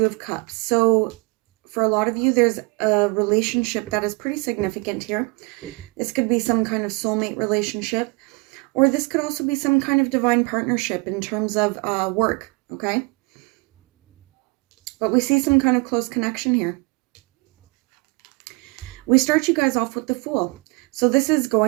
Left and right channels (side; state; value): left; quieter; 29.4 dB